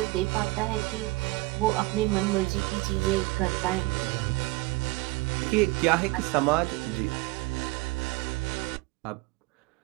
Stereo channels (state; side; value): quieter; left; 22.3 dB